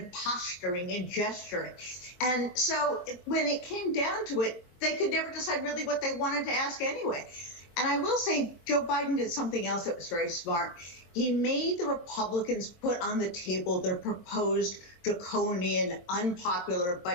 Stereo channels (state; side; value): late; right; 22 ms